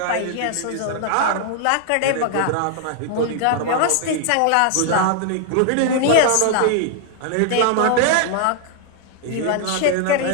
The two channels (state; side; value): different; both; correlation -0.01